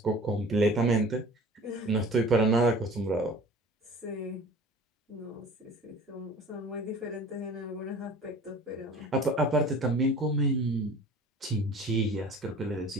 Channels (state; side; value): normal; both; correlation 0.44